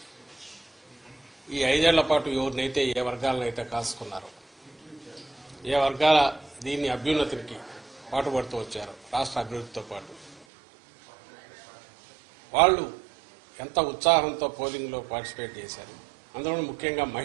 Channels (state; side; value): drops out; left; at 10.5 s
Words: ఈ 5 ఏళ్ల పాటు ఎవరినైతే ఏ వర్గాలనైతే కాసుకున్నారో, ఏ వర్గాల దీన్ని అభ్యున్నతికి పాటుపడుతూ వచ్చారో, రాష్ట్ర అభివృద్ధితో పాటు వాళ్ళు ఎంత ఉత్సాహంతో పోలింగ్లో పార్టిసిపేట్ చేశారు. అందులో ముఖ్యంగా